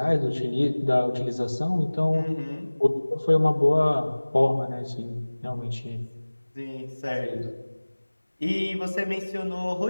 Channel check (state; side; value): inverted; both; correlation -1.00